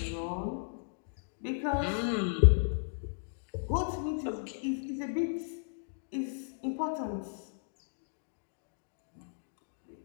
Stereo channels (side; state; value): right; silent; digital silence